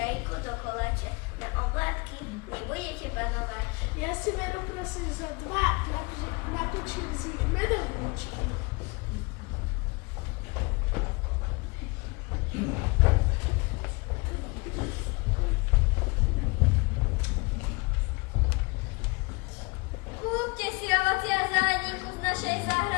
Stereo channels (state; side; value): quieter; right; 27.6 dB